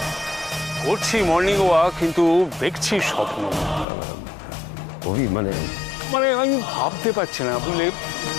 করছি মর্নিং ওয়াক, কিন্তু দেখছি স্বপ্ন। মানে মানে আমি ভাবতে পারছি না, বুঝলে,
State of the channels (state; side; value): drops out; right; at 3.9 s